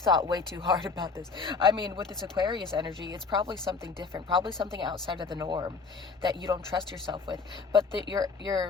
way too hard about this. I mean, with this Aquarius energy, it's probably something different, probably something outside of the norm that you don't trust yourself with. But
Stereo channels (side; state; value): right; quieter; 4.6 dB